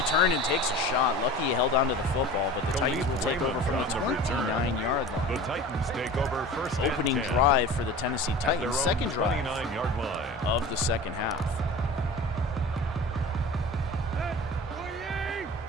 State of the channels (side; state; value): both; normal; correlation 0.37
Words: and takes a shot. Lucky he held onto the football, but the Titans will take over from the 29-yard line. The Titans take over first. Opening drive for the Tennessee Titans, second drive of the second half.